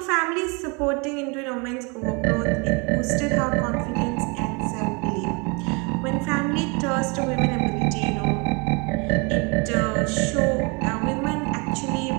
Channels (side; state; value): left; quieter; 30.8 dB